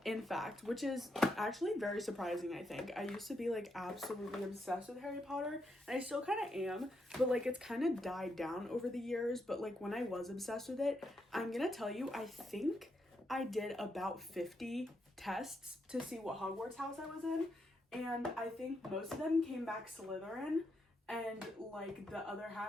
in fact, which is actually very surprising, I think. I used to be like absolutely obsessed with Harry Potter, and I still kind of am, but like it's kind of died down over the years. But like when I was obsessed with it, I'm gonna tell you, I think I did about 50 tests to see what Hogwarts house I was in, and I think most of them came back Slytherin, and like the other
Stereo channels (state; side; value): normal; both; correlation 0.81